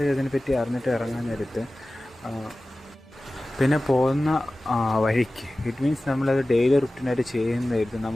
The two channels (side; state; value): both; normal; correlation 0.96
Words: അതിനെപ്പറ്റി അറിഞ്ഞിട്ട് ഇറങ്ങാൻ നേരത്ത് പിന്നെ പോകുന്ന വഴിക്ക് ഇറ്റ് മീൻസ് നമ്മളത് ഡെയിലി റുട്ടീനായിട്ട് ചെയ്യുന്നതായിരുന്നു